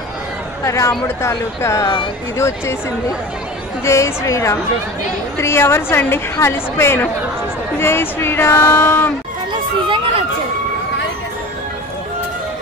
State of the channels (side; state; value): both; normal; correlation 0.35